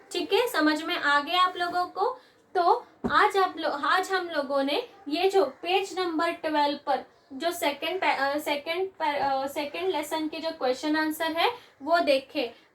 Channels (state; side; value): identical; both; correlation 1.00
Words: ठीक है, समझ में आ गया आप लोगों को? तो आज हम लोगों ने ये जो पेज नंबर 12 पर जो सेकंड लेसन के जो क्वेश्चन आंसर है वो देखे।